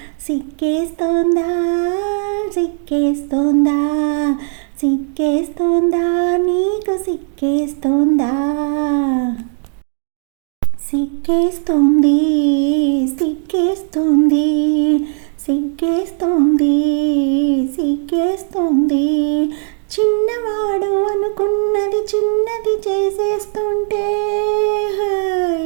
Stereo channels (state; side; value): silent; left; digital silence